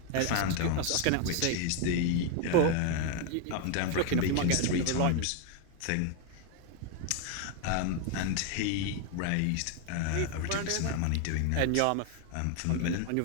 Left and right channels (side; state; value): both; different; correlation 0.00